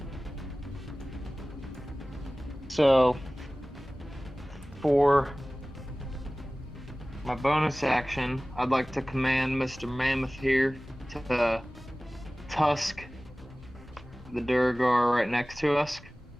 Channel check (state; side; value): normal; both; correlation 0.98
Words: So, for my bonus action, I'd like to command Mr. Mammoth here to tusk the Duergar right next to us.